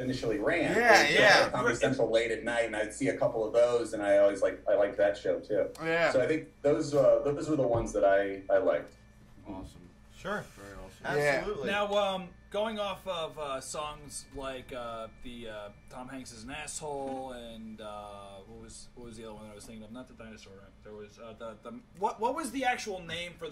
ran. Comedy Central late at night, and I'd see a couple of those, and I liked that show too. So I think those were the ones that I liked. Awesome. Sure. Very awesome. Absolutely. Now, going off of songs like the Tom Hanks is an Asshole, and what was the other one I was thinking of? Not the dinosaur. Right? There was what was the actual name for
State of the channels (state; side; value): identical; both; correlation 1.00